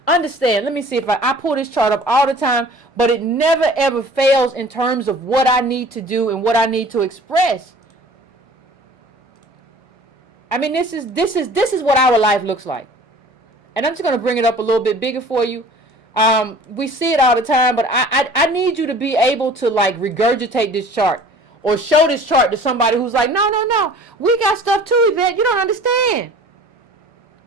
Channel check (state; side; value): normal; both; correlation 0.47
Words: Understand, let me see if I pull this chart up all the time, but it never ever fails in terms of what I need to do and what I need to express. I mean, this is what our life looks like. And I'm just going to bring it up a little bit bigger for you. We see it all the time, but I need you to be able to, like, regurgitate this chart, or show this chart to somebody who's like, no, we got stuff too, Yvette. You don't understand.